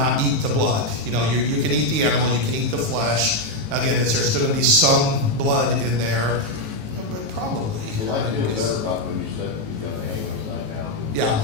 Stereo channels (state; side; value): late; left; 19 ms